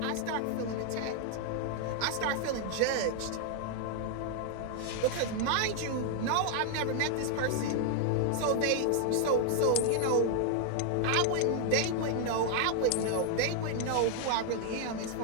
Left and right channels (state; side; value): different; both; correlation 0.00